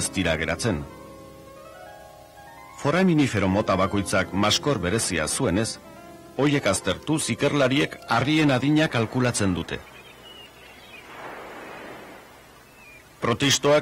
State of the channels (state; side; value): identical; both; correlation 1.00